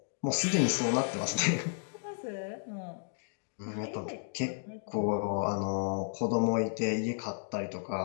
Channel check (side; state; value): right; silent; digital silence